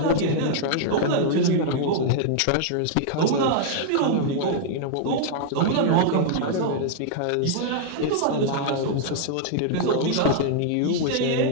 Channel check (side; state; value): both; different; correlation -0.01